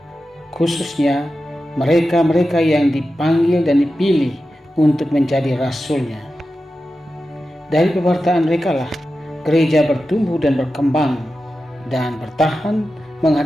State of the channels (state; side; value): normal; both; correlation 0.92